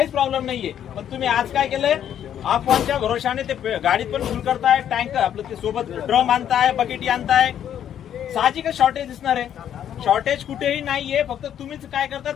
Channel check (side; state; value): right; quieter; 9.9 dB